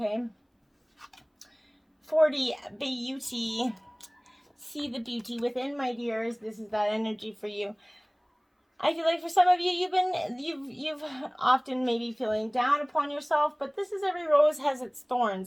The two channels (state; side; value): identical; both; correlation 1.00